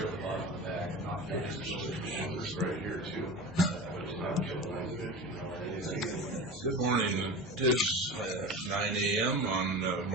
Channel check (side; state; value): both; normal; correlation 0.30